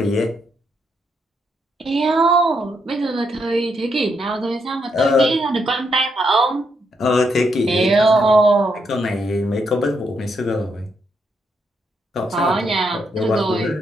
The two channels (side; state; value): both; normal; correlation 0.78